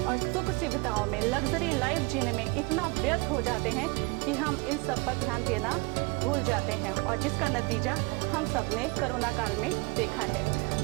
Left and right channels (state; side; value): quieter; left; 28.3 dB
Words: और सुख सुविधाओं में, लग्जरी लाइफ जीने में इतना व्यस्त हो जाते हैं कि हम इन सब पर ध्यान देना भूल जाते हैं और जिसका नतीजा हम सब ने कोरोना काल में देखा है।